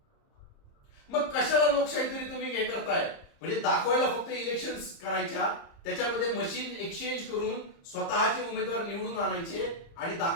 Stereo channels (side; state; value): right; late; 30 ms